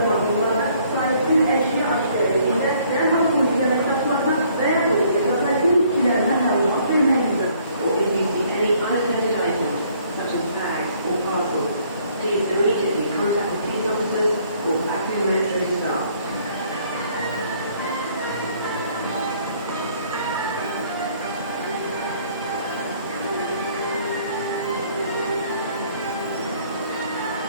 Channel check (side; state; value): both; inverted; correlation -0.62